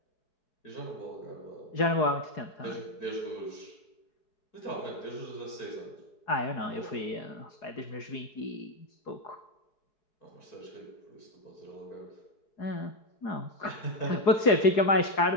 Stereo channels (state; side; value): late; right; 4.8 ms